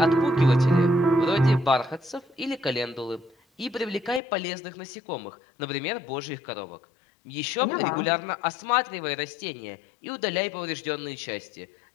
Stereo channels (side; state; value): right; drops out; at 4.2 s